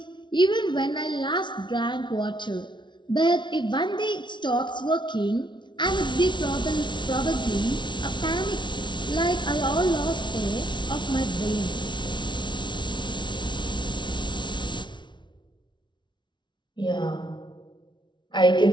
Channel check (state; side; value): late; right; 0.23 ms